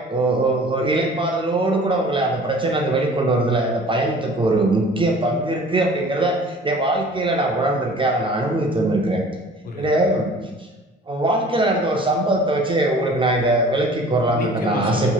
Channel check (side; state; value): both; normal; correlation 0.47